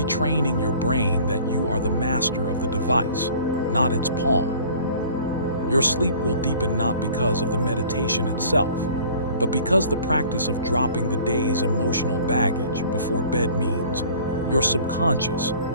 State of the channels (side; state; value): both; inverted; correlation -0.48